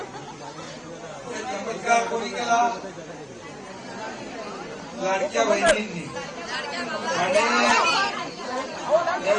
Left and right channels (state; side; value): identical; both; correlation 1.00